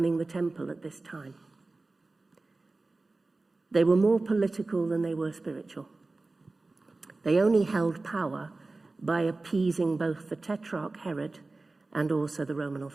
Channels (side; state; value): left; quieter; 3.4 dB